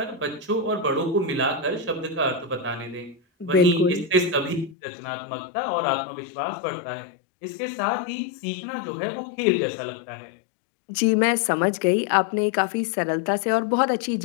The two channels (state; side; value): drops out; right; at 4.8 s